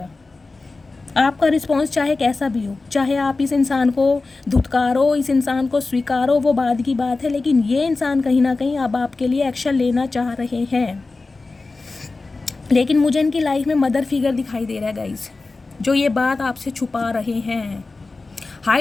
आपका रिस्पॉन्स चाहे कैसा भी हो, चाहे आप इस इंसान को धुतकारो, इस इंसान को स्वीकारो, वो बाद की बात है, लेकिन ये इंसान कहीं ना कहीं अब आपके लिए एक्शन लेना चाह रहे हैं। लेकिन मुझे इनकी लाइफ में मदर फिगर दिखाई दे रहा है गाइस, जो ये बात आपसे छुपा रहे हैं,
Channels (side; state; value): right; quieter; 3.6 dB